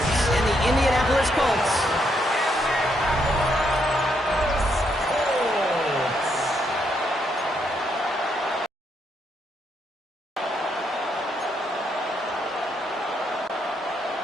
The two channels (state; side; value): normal; both; correlation 0.76